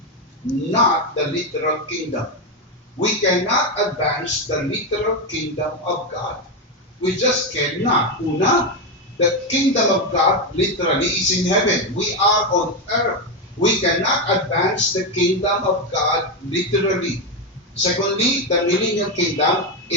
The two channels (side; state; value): both; normal; correlation 0.10